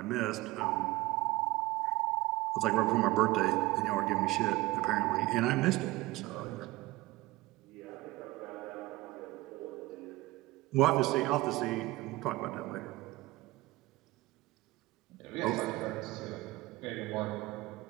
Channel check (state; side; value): quieter; left; 19.4 dB